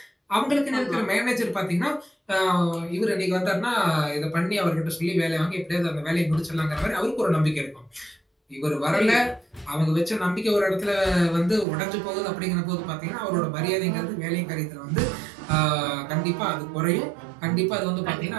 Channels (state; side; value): drops out; left; at 11.7 s